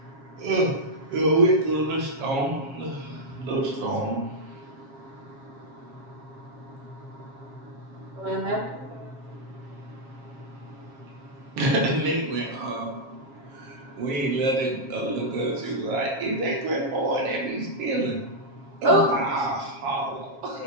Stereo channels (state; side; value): late; left; 7.4 ms